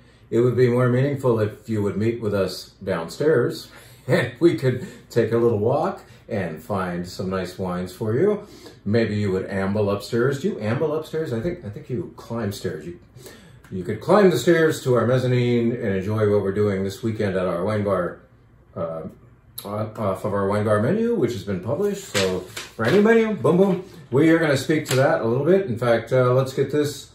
It would be more meaningful if you would meet with us downstairs and we could take a little walk and find some nice wines for you. Maybe you would amble upstairs. Do you amble upstairs? I think you climb stairs. You could climb the stairs to our mezzanine and enjoy what we're doing this weekend at our wine bar, off of our wine bar menu, which has been published. So for any menu, boom, boom, we are going to speak to that a little bit. In fact, let's get this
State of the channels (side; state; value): both; identical; correlation 1.00